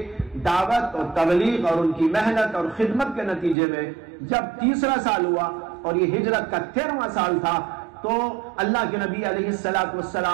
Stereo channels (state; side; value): drops out; left; at 3.6 s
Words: دعوت اور تبلیغ اور ان کی محنت اور خدمت کے نتیجے میں جب 3 سال ہوا اور یہ ہجرت کا 13واں سال تھا، تو اللہ کے نبی علیہ